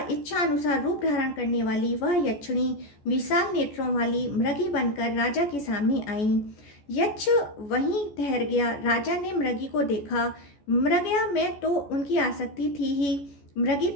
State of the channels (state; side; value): late; right; 14 ms